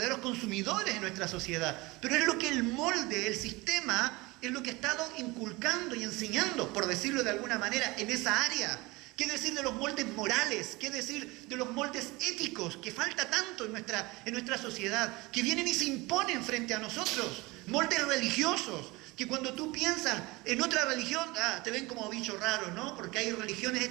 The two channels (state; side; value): quieter; left; 22.9 dB